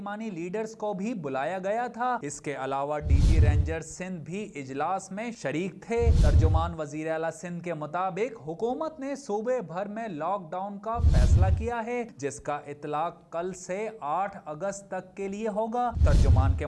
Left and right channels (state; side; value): identical; both; correlation 1.00